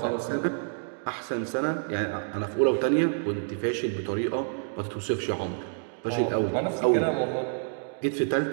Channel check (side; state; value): left; silent; digital silence